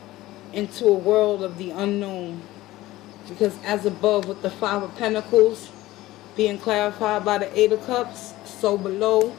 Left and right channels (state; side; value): quieter; right; 17.1 dB